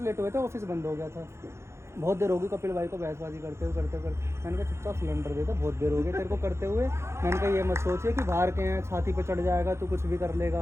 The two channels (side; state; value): left; late; 0.13 ms